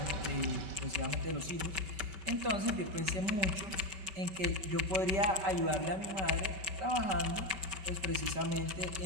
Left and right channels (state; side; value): late; left; 5.2 ms